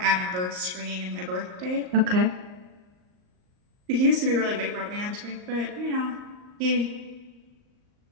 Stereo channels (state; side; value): late; left; 38 ms